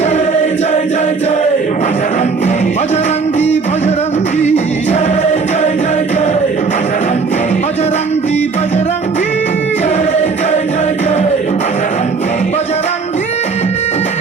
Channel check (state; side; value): quieter; left; 4.7 dB